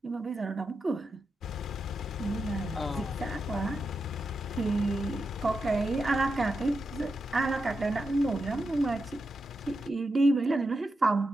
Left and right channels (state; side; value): normal; both; correlation 0.87